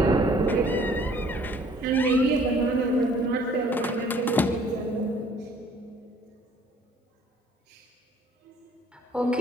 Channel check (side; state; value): both; normal; correlation 0.57